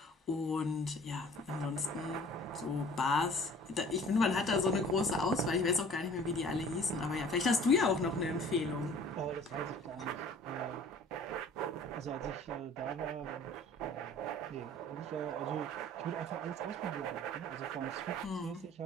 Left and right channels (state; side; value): normal; both; correlation 0.49